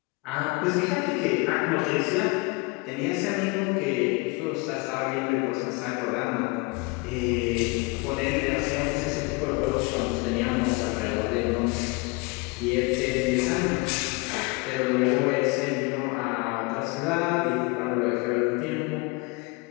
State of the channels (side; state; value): right; quieter; 27.5 dB